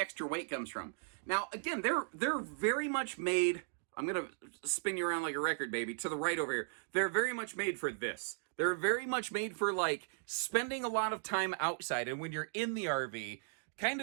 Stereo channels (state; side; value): silent; left; digital silence